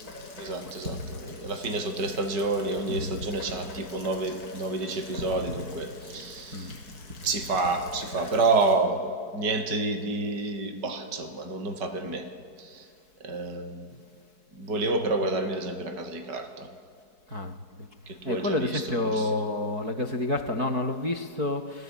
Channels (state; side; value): late; left; 4.7 ms